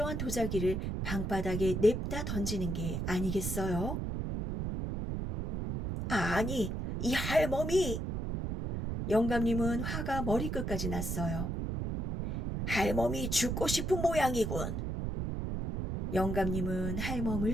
도자기를 방바닥에 냅다 던지는 게 아니겠어요? 아니, 이 할멈이. 영감님은 화가 머리끝까지 났어요. 할멈이 죽고 싶은 모양이군. 영감님은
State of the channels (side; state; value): right; noise; rumble, 2 dB below the sound